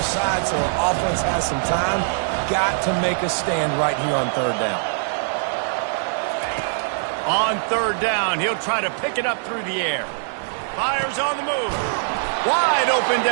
side so our offense has some time. Got to make a stand right here on 3rd down. On 3rd down, he'll try to pick it up through the air. Fires on the move. Wide open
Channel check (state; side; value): silent; left; digital silence